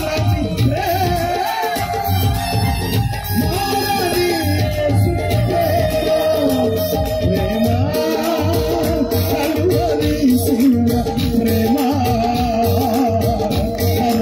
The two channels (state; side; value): identical; both; correlation 1.00